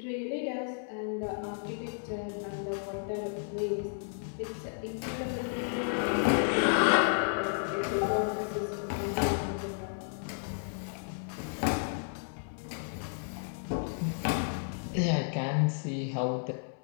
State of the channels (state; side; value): silent; right; digital silence